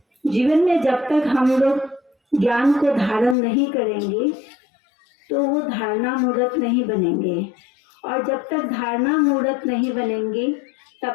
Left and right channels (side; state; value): right; drops out; at 3.4 s